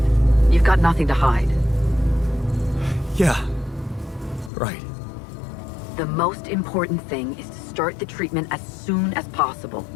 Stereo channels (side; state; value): right; drops out; at 4.5 s